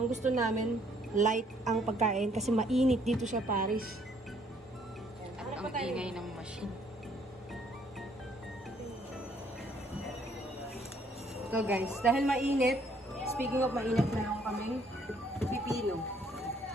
gusto namin light ang pagkain kasi mainit dito sa Paris. At ang ingay ng machine. So guys, dahil mainit, speaking of mainit, meron kaming pipino.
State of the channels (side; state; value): both; normal; correlation 0.65